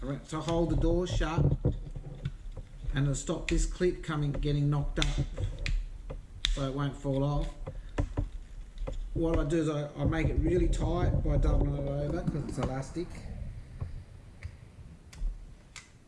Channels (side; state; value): both; identical; correlation 1.00